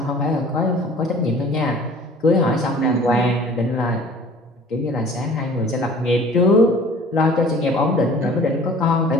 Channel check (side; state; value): both; normal; correlation 0.48